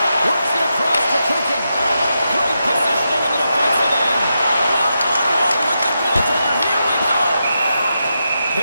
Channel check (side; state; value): both; inverted; correlation -0.86